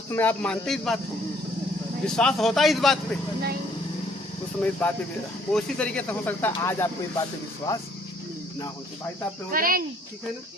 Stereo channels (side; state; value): both; normal; correlation 0.62